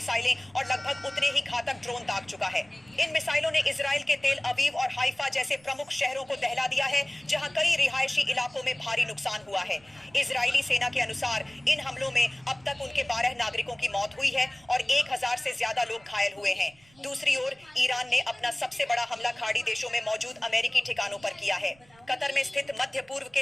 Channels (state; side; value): noise; right; rumble, 29 dB below the sound